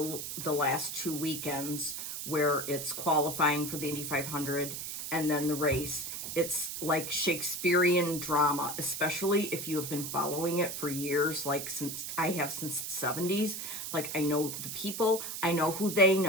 last 2 weekends where it's qualifying for the Indy 500 and then the race. It's like Shakespearean drama, especially if you have been following it for years, like since the 70s. Like, I know the people, I know who they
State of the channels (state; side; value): noise; right; hiss, 6 dB below the sound